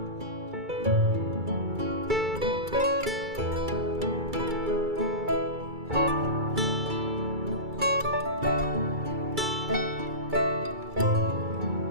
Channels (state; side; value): late; left; 2.3 ms